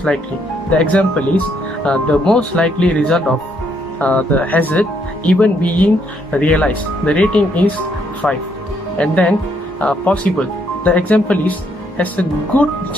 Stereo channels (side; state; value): both; normal; correlation 0.72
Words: likely. The example is the most likely result of the hazard even being realized. The rating is 5. And then possible. The example is has a good